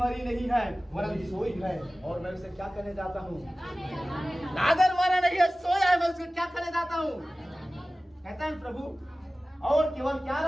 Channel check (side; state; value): both; normal; correlation 0.97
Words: नहीं है वरन सोई है, और मैं उसे क्या करने जाता हूँ, अगर मरा नहीं है सोया है, मैं उसे क्या करने जाता हूँ, कहता है प्रभु। और केवल क्या